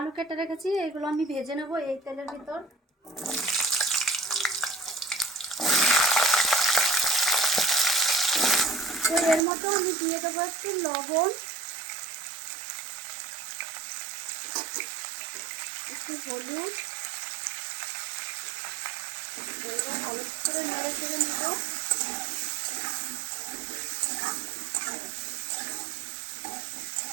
কেটে রেখেছি, এগুলো আমি ভেজে নেব এই তেলের ভিতর। তো এর মতো আমি দিয়ে দেবো একটু লবণ, একটু হলুদ। এবার ভালো করে নেড়ে চেড়ে নেব।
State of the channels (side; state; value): left; drops out; at 9.4 s